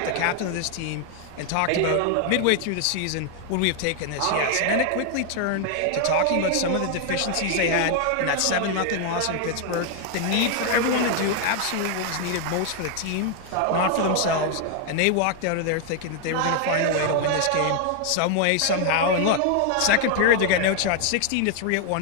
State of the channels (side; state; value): both; different; correlation 0.00